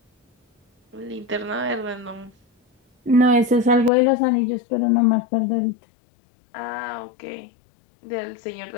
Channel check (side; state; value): right; drops out; at 3.9 s